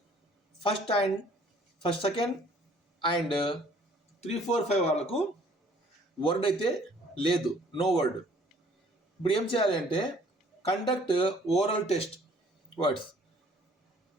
first second and 3, 4, 5 వాళ్ళకు వర్డ్ అయితే లేదు, no word. ఇప్పుడు ఏం చేయాలి అంటే conduct oral test words.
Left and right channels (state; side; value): normal; both; correlation 0.57